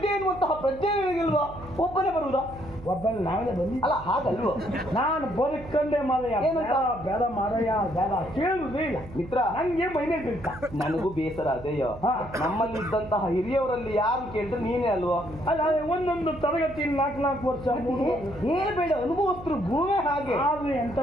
ಎನ್ನುವಂತಹ ಪ್ರಜ್ಞೆ ನಿನಗಿಲ್ವಾ? ಒಬ್ಬನೇ ಬರುವುದಾ? ಒಬ್ಬನ ನಾವೇ ಬಂದಿ ಅಲ್ಲ, ಹಾಗಲ್ವ? ನಾನು ಬದುಕಂಡೆ ಮಾರಯ್ಯ. ಬೇಡ ಮಾರಯ್ಯ, ಬೇಡ ಕೇಳುವುದೇ ಇಲ್ಲ ಮಿತ್ರ. ನಂಗೆ ಮೈನೆ ಬೇಕಾ. ನನಗೂ ಬೇಸರ ಅದೇಯೋ. ನಮ್ಮಲ್ಲಿದ್ದಂತಹ ಹಿರಿಯವರಲ್ಲಿ ಯಾರು ಕೇಳಿದ್ರೆ ನೀನೇ ಅಲ್ವಾ? ಅಲ್ಲ, ಒಂದೊಂದು ತರಗತಿ 4 ವರ್ಷ ಹೇಳ್ಬೇಡ, ಅನುಭವಸ್ಥರು ಭೂಮಿ ಹಾಗೆ. ಆದ್ರೆ ಎಂತ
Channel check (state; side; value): noise; right; hum, 16 dB below the sound